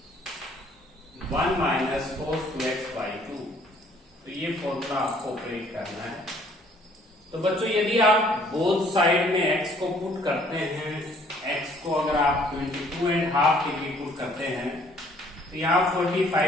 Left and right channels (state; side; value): normal; both; correlation 0.60